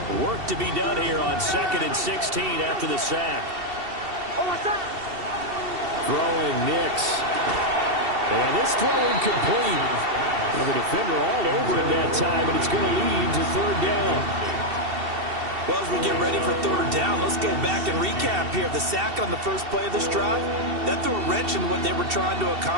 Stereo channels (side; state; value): left; late; 2.7 ms